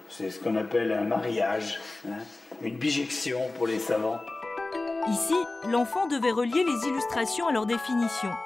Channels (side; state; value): right; quieter; 3.1 dB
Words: C'est ce qu'on appelle un mariage, hein, une bijection pour les savants. Ici, l'enfant devait relier les illustrations à leur définition.